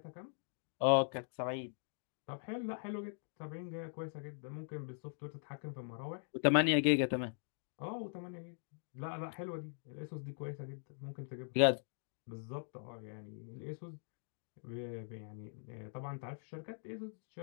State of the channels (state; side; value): silent; right; digital silence